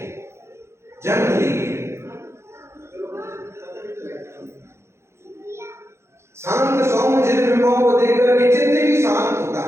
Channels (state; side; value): late; left; 0.13 ms